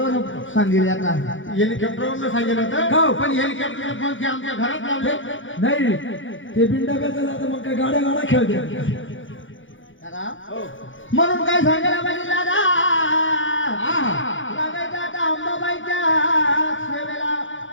सांगितले आता. हेलिकॉप्टरवरून सांगितलं होतं, पण हेलिकॉप्टर पंखे आमच्या घरात लावले. नाही ते बिंडाब्याचं जातं मग काय गाड्या गाड्या खेळते. दादा म्हणून काय सांगायला पाहिजे दादा? लागायचं आता अंबाबाईच्या सेवेला.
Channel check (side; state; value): right; late; 0.56 ms